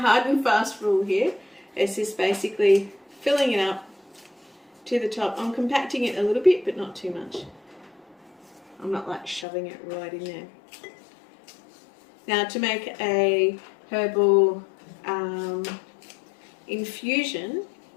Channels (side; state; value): right; drops out; at 9.5 s